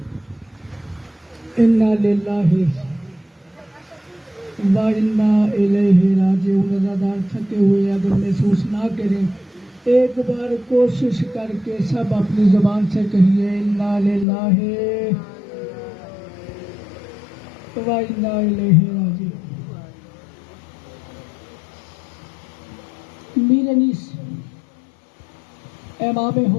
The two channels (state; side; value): drops out; right; at 14.2 s